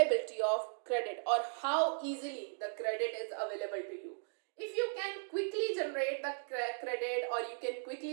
of credit, or how easily the credit is available to you. If you can quickly generate the credit, or you can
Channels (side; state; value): left; silent; digital silence